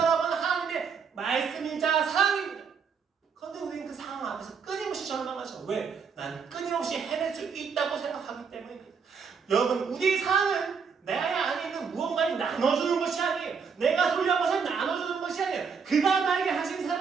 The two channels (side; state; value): left; quieter; 6.0 dB